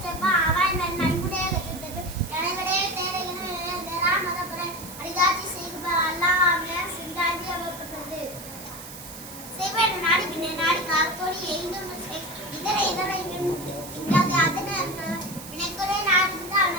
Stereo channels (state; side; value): noise; right; hiss, 13 dB below the sound